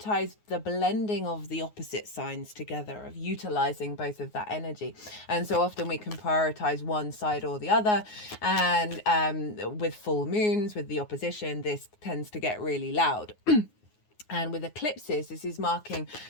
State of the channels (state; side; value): late; right; 9.5 ms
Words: the blending of the opposite signs together, of utilizing both of that energy. And so often we can prioritize one side or the other. And with full moons, with the opposition, this tends to get really loud. And with eclipses, this is marking